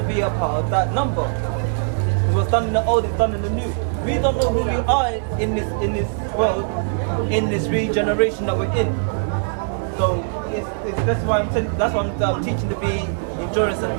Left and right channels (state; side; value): silent; left; digital silence